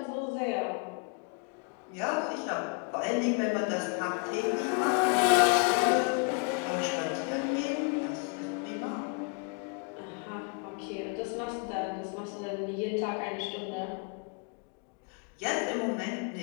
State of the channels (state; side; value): quieter; right; 36.1 dB